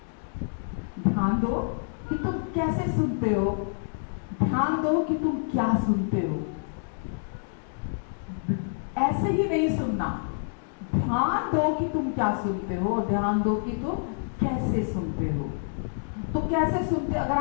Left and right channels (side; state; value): right; silent; digital silence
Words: ध्यान दो कि तुम कैसे सुनते हो, ध्यान दो कि तुम क्या सुनते हो। ऐसे ही नहीं सुनना, ध्यान दो कि तुम क्या सुनते हो और ध्यान दो कि तुम कैसे सुनते हो। तो कैसे सुनते, अगर